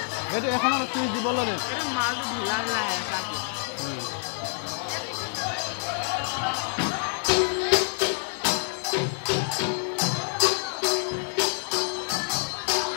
এইটো এখনত চুইচ দিব লাগে মালটো ঢিলা ঢিলা আছে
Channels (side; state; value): right; silent; 60 dB below the other